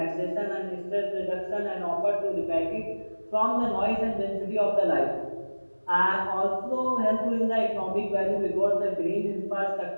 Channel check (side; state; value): both; inverted; correlation -1.00